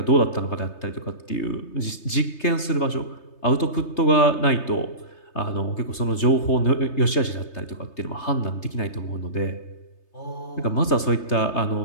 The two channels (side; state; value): right; late; 3.3 ms